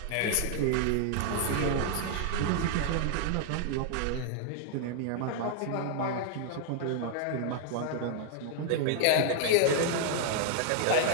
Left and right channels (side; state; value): both; different; correlation 0.00